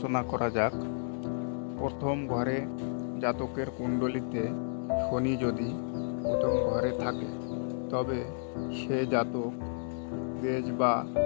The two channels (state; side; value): silent; right; digital silence